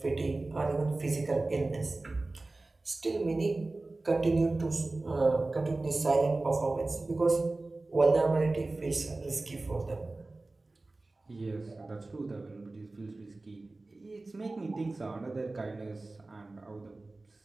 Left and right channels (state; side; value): quieter; left; 3.2 dB